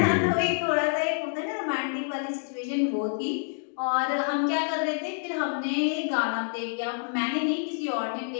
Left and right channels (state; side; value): silent; right; digital silence